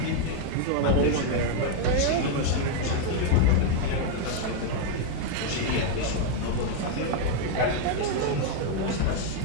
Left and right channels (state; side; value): different; both; correlation 0.00